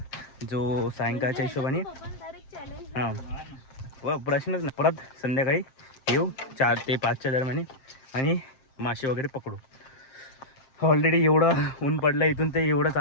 जो सायंकाळच्या हिशोबाने हां व प्रश्नच नाही. परत संध्याकाळी येऊ 4 ते 5च्या दरम्यान आणि मासे वगैरे पकडू. ऑलरेडी एवढं ऊन पडलं इथून ते एवढं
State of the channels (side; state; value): right; late; 7.6 ms